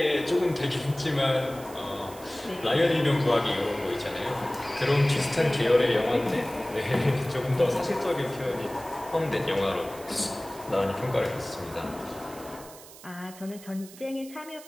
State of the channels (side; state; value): right; noise; hiss, 18 dB below the sound